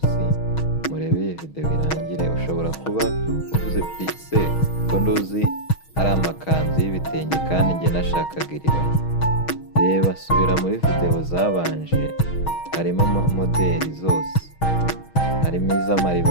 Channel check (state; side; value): late; right; 6.3 ms